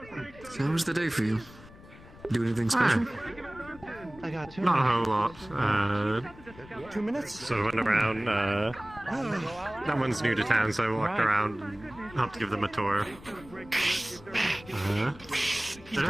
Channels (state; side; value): noise; left; rumble, 20 dB below the sound